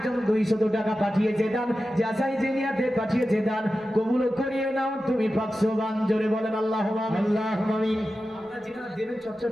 200 টাকা পাঠিয়েছে দান, যাচাই জেনিয়াতে পাঠিয়েছে দান, কবুল করিয়ে নাও তুমি পাক সুবহান। জোরে বলেন আল্লাহুম্মা আমিন, আল্লাহুম্মা আমিন। আপনারা যেটা দেবেন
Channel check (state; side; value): normal; both; correlation 0.93